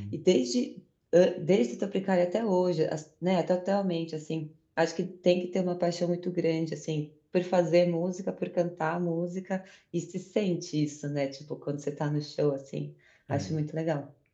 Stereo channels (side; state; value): both; identical; correlation 1.00